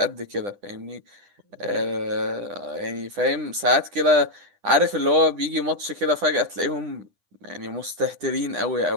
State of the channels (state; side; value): late; left; 10 ms